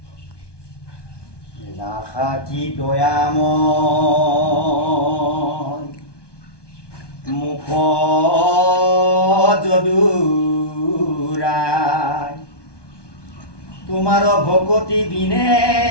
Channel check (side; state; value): right; late; 1.2 ms